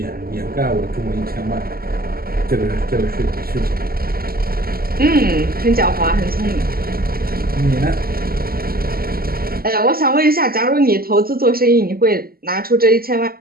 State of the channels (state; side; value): late; left; 0.43 ms